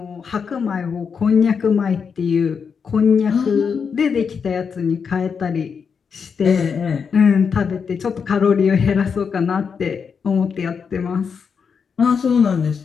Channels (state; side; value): quieter; right; 6.2 dB